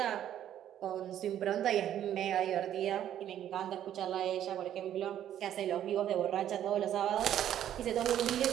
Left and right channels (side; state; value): left; quieter; 10.9 dB